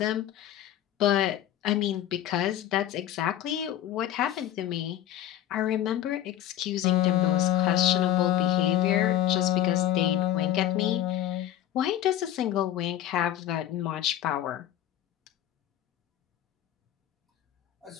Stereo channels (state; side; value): quieter; right; 11.9 dB